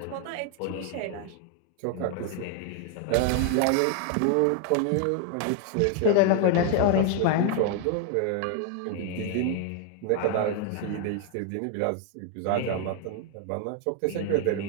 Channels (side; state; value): both; different; correlation 0.00